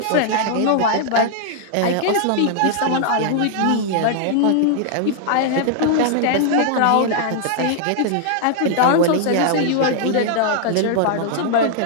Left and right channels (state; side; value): different; both; correlation -0.01